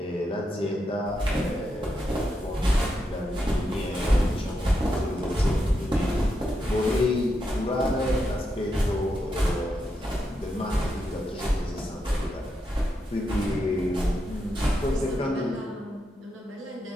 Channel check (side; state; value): both; normal; correlation 0.84